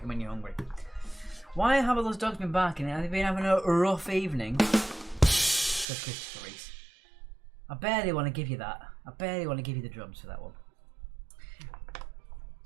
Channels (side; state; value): left; drops out; at 5.9 s